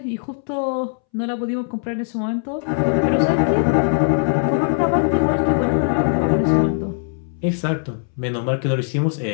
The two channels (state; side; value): silent; right; 65 dB below the other